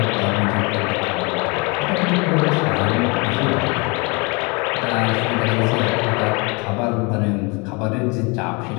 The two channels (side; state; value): right; quieter; 29.6 dB